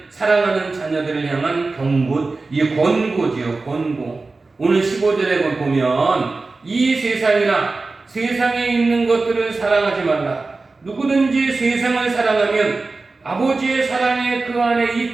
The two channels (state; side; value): quieter; left; 3.7 dB